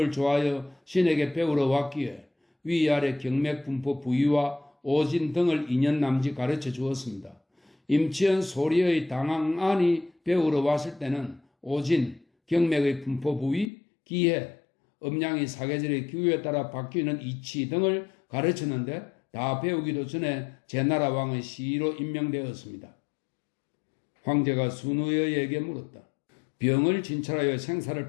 좋아하여 신에게 배우러 왔기에 위아래 경맥 분포 부위와 오진 등을 2년 남짓 가르쳐 주었습니다. 임치연 소리의 당황안이 배우러 왔을 때는 오진, 경맥의 분포 부위, 기해, 음양이 사계절의 기후에 따라 바뀌는 이치 등을 가르쳤는데 다 배우기도 전에 제나라 왕의 시로 임명되었습니다. 황제가 순우여에게 물었다. 병을 진찰하여 생사를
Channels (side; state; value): right; drops out; at 13.7 s